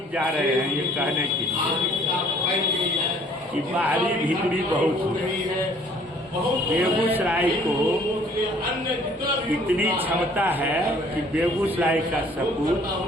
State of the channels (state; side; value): normal; both; correlation 0.57